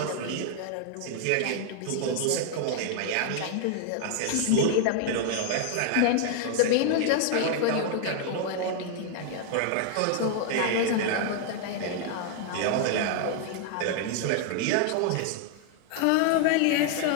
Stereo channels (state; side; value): different; both; correlation 0.00